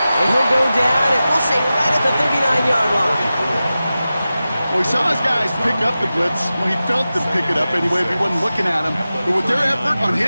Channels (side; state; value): both; inverted; correlation -0.94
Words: And he'll go down, and we'll say right at the 39-yard line. Well, he saw his guys pick up the blitz. Well, he felt them pick it up anyway, but he wasn't looking at him. But with their effort on